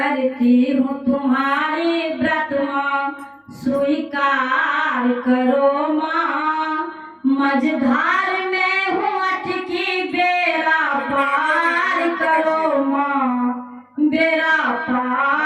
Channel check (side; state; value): both; identical; correlation 1.00